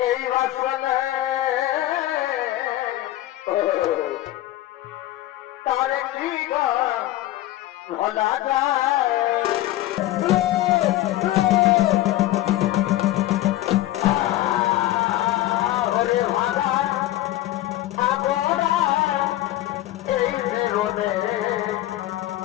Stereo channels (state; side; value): quieter; right; 15.3 dB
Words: এই বাসনে তার কি ভোলা যায়